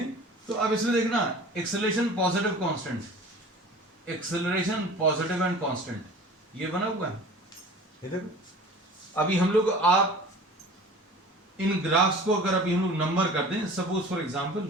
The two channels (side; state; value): both; normal; correlation 0.42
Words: तो अब इसमें देखना acceleration positive constant, acceleration positive and constant, ये बना हुआ है. ये देखो अभी हम लोग आप इन ग्राफ्स को अगर अभी हम लोग नंबर कर दें, सपोज फॉर